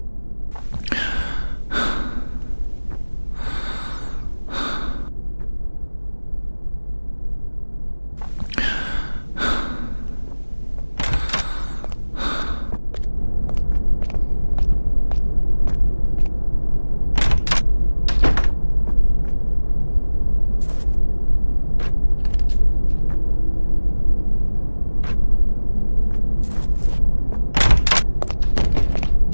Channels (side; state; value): both; inverted; correlation -1.00